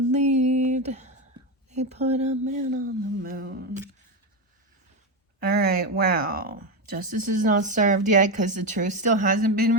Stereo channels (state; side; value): normal; both; correlation 0.12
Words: They put a man on the moon. All right, wow. Justice is not served yet because the truth still hasn't been